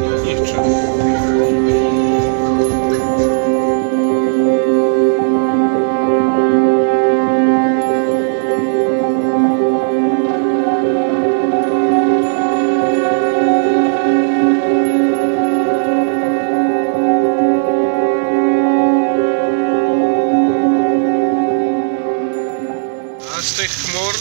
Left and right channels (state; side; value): silent; left; digital silence